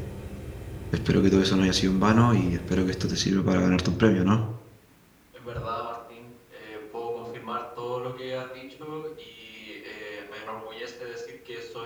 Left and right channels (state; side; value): identical; both; correlation 1.00